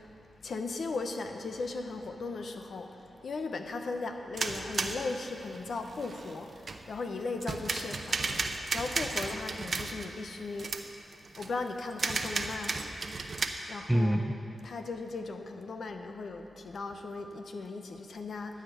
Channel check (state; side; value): normal; both; correlation 0.88